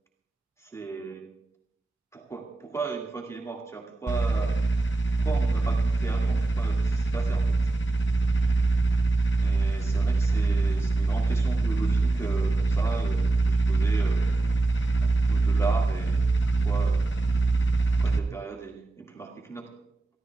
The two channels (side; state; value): left; quieter; 3.0 dB